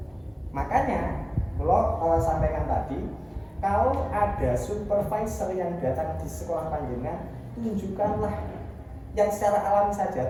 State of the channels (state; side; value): identical; both; correlation 1.00